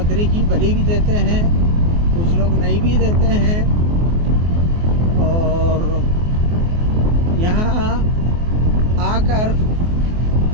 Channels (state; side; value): late; left; 24 ms